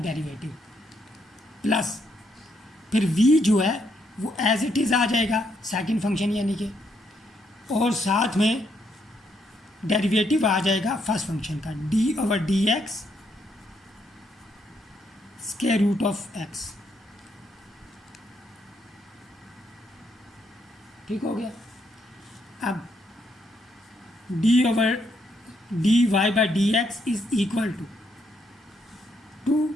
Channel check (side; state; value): both; normal; correlation 0.75